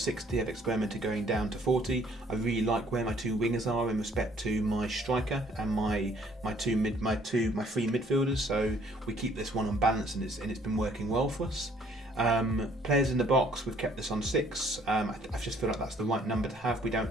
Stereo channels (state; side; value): normal; both; correlation 0.61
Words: I've experimented going down to 40. I really like where my 2 wingers are in respect to my striker and my 3 midfielders, so we keep this one unbalanced, and it's been working well for us. Players in the box, we've kept this on 6. I just feel like that's the right number to have. We